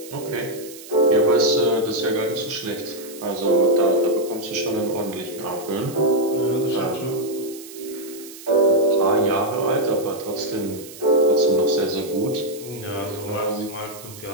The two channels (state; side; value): noise; right; hiss, 16 dB below the sound